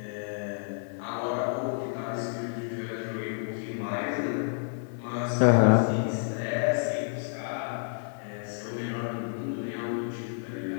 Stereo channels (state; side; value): silent; right; digital silence